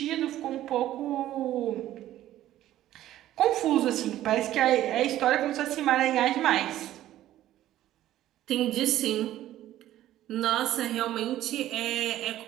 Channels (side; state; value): left; quieter; 13.5 dB